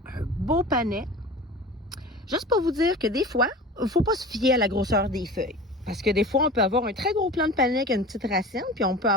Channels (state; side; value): normal; both; correlation 0.36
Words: un beau panais. Juste pour vous dire que des fois, il ne faut pas se fier à la grosseur des feuilles. Parce que des fois, on peut avoir un très gros plant de panais qui a une petite racine, puis on peut